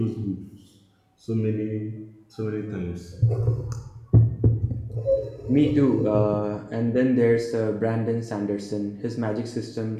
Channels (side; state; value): both; identical; correlation 1.00